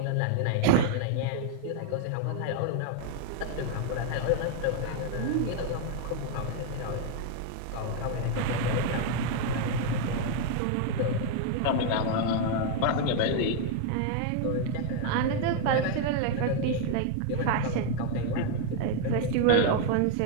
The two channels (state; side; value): different; both; correlation 0.00